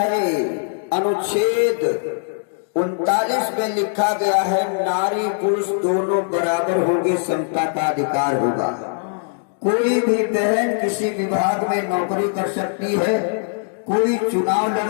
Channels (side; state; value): right; silent; digital silence